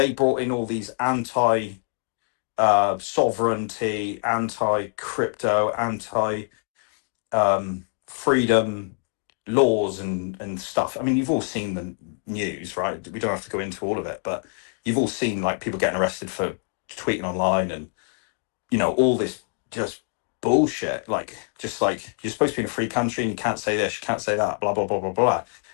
brought in all these anti-sovereignty, anti-crypto, anti-freedom laws and stuff. I mean, you've all seen the news, right? We don't have to go into all of it, but you've all seen like people getting arrested for tweeting online and all this just bullshit, like just like you're supposed to be in a free country and you can't say this, you can't say that, blah blah blah blah blah.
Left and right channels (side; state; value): right; silent; 56 dB below the other